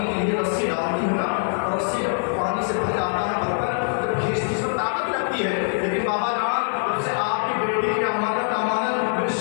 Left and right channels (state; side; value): silent; right; digital silence